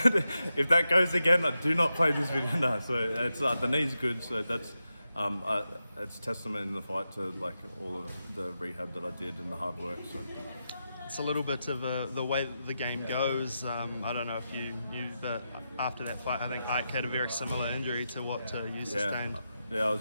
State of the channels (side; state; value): both; inverted; correlation -0.88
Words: If that goes again, I do not play this video. No, so it's the knee's good, so that's it's testament in the fight to like all of the rehab that I did and the hard work. So it's a little bit of the way that the game goes. I don't know if you knew, but after that fight, I think Ike had a very similar injury to what you sustained. Yeah, I